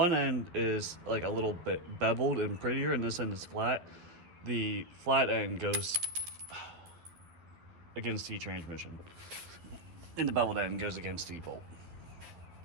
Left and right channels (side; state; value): left; late; 11 ms